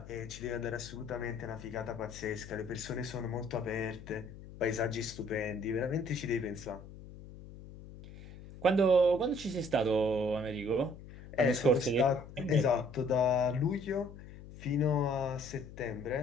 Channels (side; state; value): left; noise; hum, 16 dB below the sound